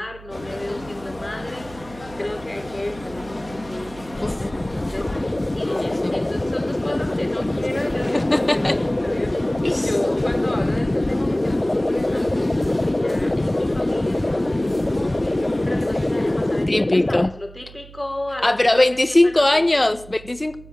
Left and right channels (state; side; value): noise; right; hum, 19 dB below the sound